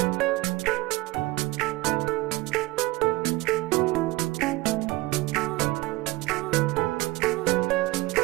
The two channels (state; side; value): quieter; left; 20.7 dB